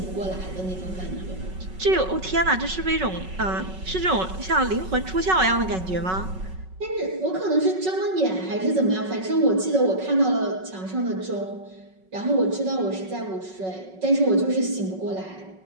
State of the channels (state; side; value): late; left; 5.4 ms